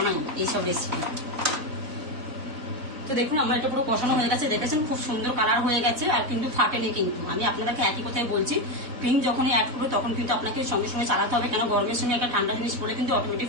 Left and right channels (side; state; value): left; late; 4.0 ms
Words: এইসব রেসিপি। তো দেখুন আমার এটা পুরো কষানো হয়ে গেছে, দেখেছেন খুব সুন্দর কালার হয়ে গেছে, আর কিন্তু ফাটেনি। কিন্তু আমি আপনাদেরকে একই কথাই বলছি, ক্রিম যখনই অ্যাড করবে তখন কিন্তু আপনাকে সঙ্গে সঙ্গে চালাতে হবে, কেন গরমের সঙ্গে একটা ঠান্ডা জিনিস পড়লে কিন্তু অটোমেটিক